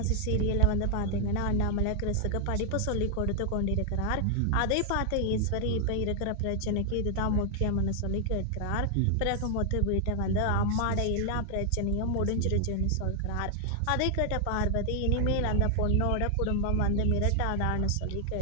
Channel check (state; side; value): different; both; correlation 0.00